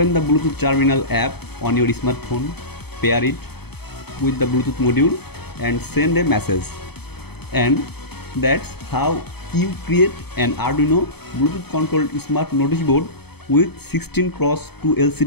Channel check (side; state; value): right; late; 0.97 ms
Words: the Bluetooth terminal app on your smartphone, pair it with the Bluetooth module and send a message. And that's how you create an Arduino Bluetooth controlled smart notice board with 16x2